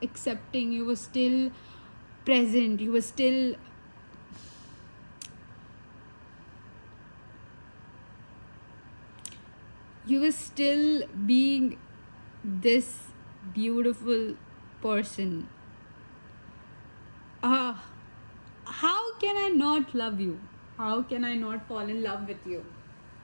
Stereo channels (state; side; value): inverted; both; correlation -1.00